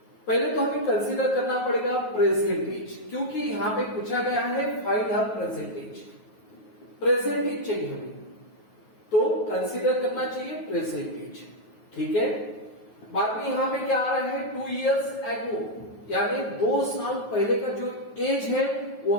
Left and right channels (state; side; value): late; right; 9.3 ms